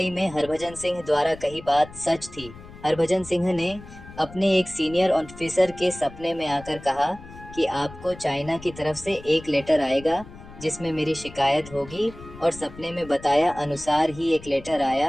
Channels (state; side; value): noise; left; rumble, 17 dB below the sound